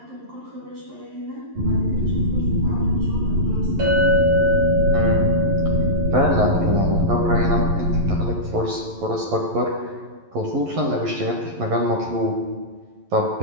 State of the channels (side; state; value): left; late; 11 ms